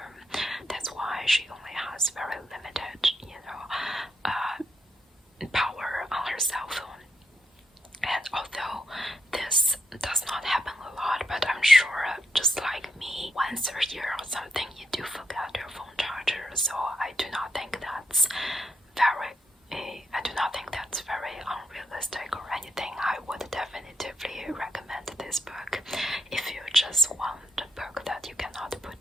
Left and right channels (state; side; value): normal; both; correlation 0.80